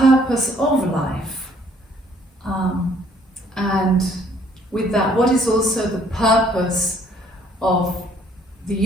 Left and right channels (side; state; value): both; normal; correlation 0.62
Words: of life? And with that, what is also the purpose of the